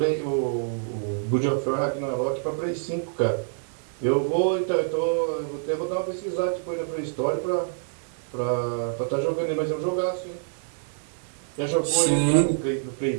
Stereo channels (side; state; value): left; silent; digital silence